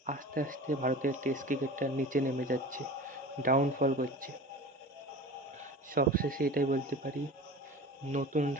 আস্তে আস্তে ভারতের টেস্ট ক্রিকেটটা নিচে নেমে যাচ্ছে, ডাউনফল করছে। সবশেষে এটাই বলতে পারি,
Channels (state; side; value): normal; both; correlation 0.36